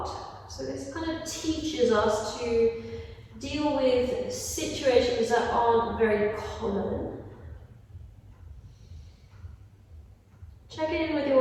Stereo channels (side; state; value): both; identical; correlation 1.00